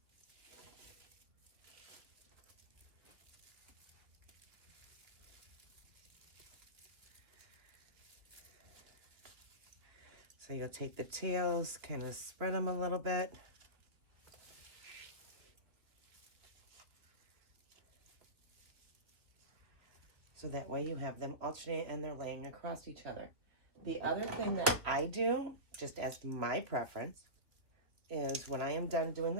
So you'll take the tails, kind of spread them a little bit. So that way you have them alternate and they're laying across each other. The other thing that I do, just as my preference, is when I am done doing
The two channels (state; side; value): late; left; 2.7 ms